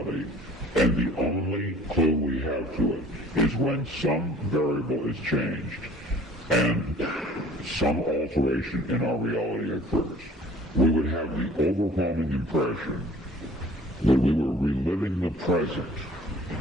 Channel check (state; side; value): normal; both; correlation 0.51